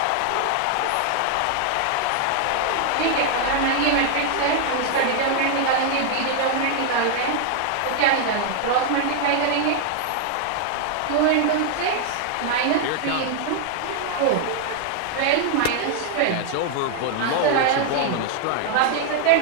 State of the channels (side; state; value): both; different; correlation 0.00